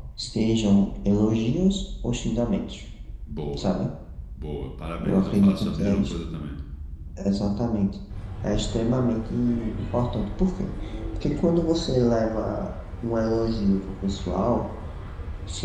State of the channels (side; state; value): both; identical; correlation 1.00